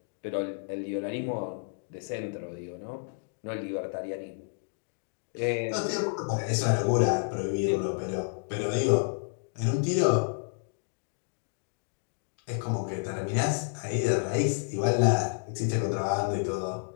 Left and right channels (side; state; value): right; silent; digital silence